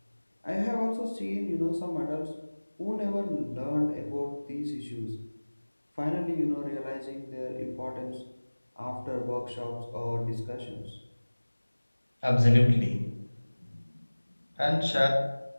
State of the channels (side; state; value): both; inverted; correlation -1.00